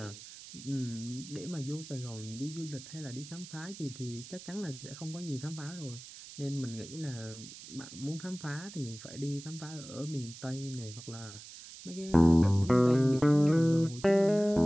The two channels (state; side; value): noise; right; hiss, 15 dB below the sound